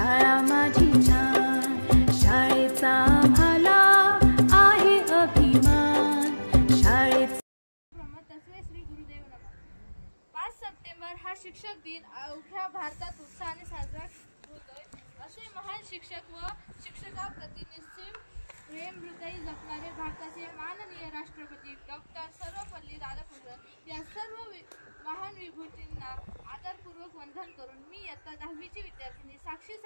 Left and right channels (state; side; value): inverted; both; correlation -1.00